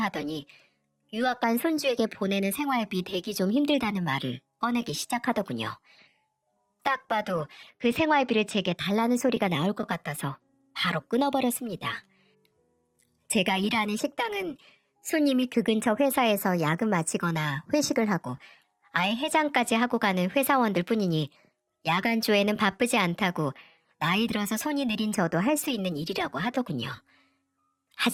하더니 유학 간 손주에게 보내는 생활비 대기 좀 힘들다는 말을 꺼내기 시작하더군요. 딱 봐도 그 생활비를 제게 달라는 소리가 나올 것 같아서 바로 끊어버렸습니다. 제가 일하는 식당은 손님이 그 근처 회사에서 야근 마치거나 회식을 하고 아예 해장까지 하고 가는 회사원들 뿐이니 야간조에는 바쁘지 않다고 나이 들어서 손이 느린 저도 할 수 있는 일이라고 하더군요.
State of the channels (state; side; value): identical; both; correlation 1.00